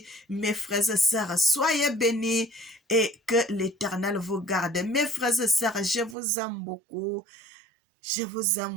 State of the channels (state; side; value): drops out; left; at 6.2 s